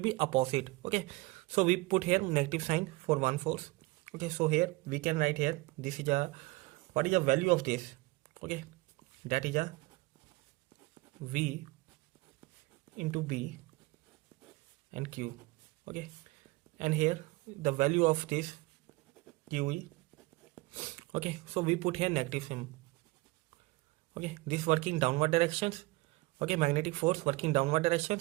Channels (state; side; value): quieter; left; 21.8 dB